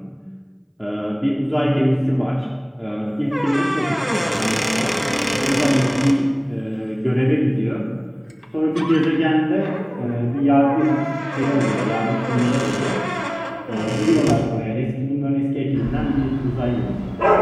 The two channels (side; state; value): both; identical; correlation 1.00